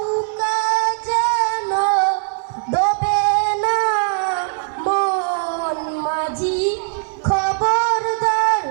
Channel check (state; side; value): silent; left; digital silence